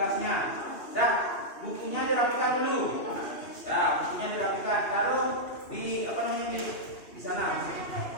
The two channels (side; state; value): right; late; 2.8 ms